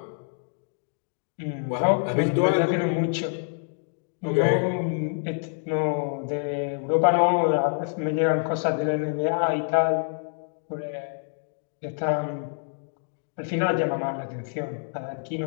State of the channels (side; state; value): right; silent; digital silence